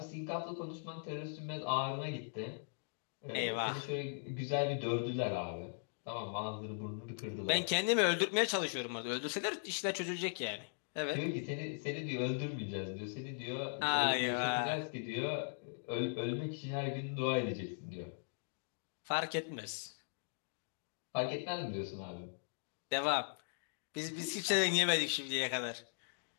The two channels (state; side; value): silent; right; digital silence